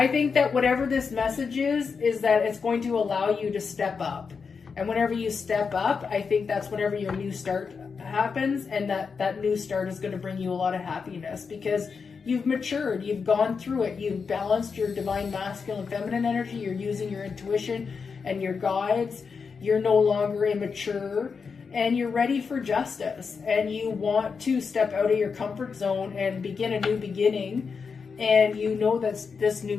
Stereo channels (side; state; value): right; quieter; 5.5 dB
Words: think that whatever this message is that it's going to allow you to step up. And whenever you step up, I think that's whenever your new start happens, and that new start is going to bring you a lot of happiness because you've matured, you've gone through it, you've balanced your divine masculine feminine energy, you're using your intuition and your guides, you're no longer immature, and you're ready for justice, and you want to step out of your comfort zone and begin a new beginning. And you know that this new